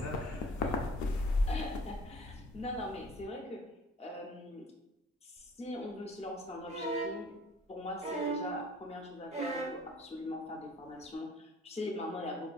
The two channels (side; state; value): both; normal; correlation 0.51